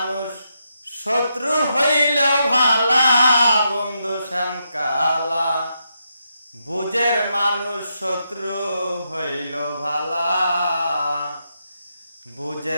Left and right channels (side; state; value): both; inverted; correlation -0.82